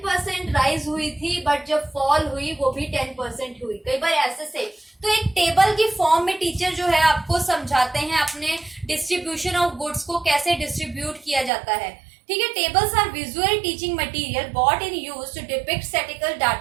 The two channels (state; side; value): drops out; left; at 11.5 s